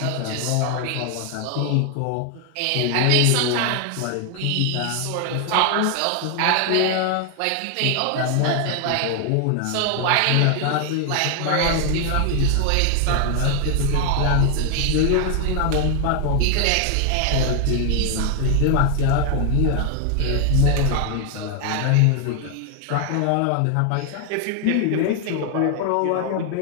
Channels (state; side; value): different; both; correlation 0.00